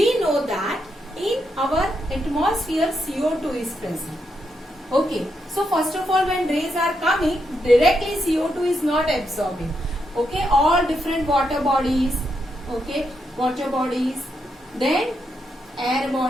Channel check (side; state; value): both; normal; correlation 0.81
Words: know that in our atmosphere CO2 is present. Okay, so first of all, when rays are coming, directly CO2 is not absorbing. Okay, all different water bodies, then air